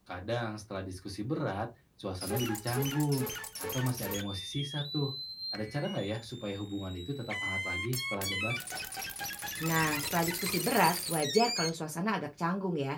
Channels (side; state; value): both; identical; correlation 1.00